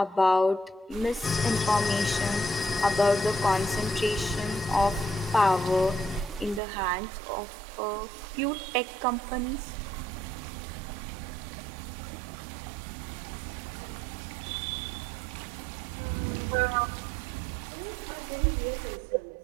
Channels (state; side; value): drops out; left; at 6.6 s